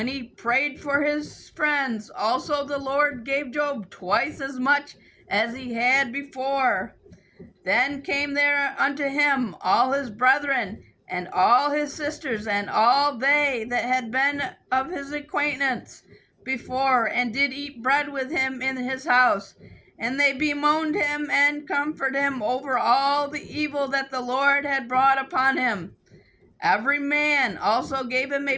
he prayed for his friends. Also the Lord gave Job twice as much as he had before. Then came there unto him all his brethren, and all his sisters, and all they that had been of his acquaintance before, and did eat bread with him in his house. And they bemoaned him and comforted him over all the evil that the Lord had brought upon him. Every man also gave him a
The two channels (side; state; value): both; identical; correlation 1.00